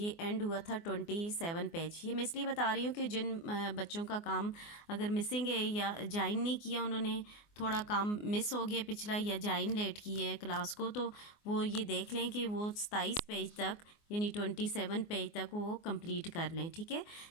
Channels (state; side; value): late; right; 24 ms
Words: एंड हुआ था 27 पेज। ये मैं इसलिए बता रही हूँ कि जिन बच्चों का काम अगर मिसिंग है या ज्वाइन नहीं किया, उन्होंने थोड़ा काम मिस हो गया पिछला या ज्वाइन लेट की है क्लास को, तो वो ये देख लें कि वो 27 पेज तक यानी 27 पेज तक वो कंप्लीट कर लें। ठीक है,